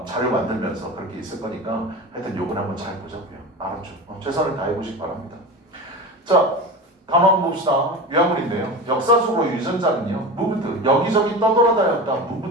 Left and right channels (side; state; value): both; normal; correlation 0.28